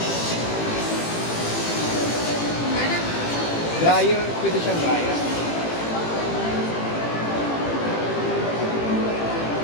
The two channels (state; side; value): late; right; 18 ms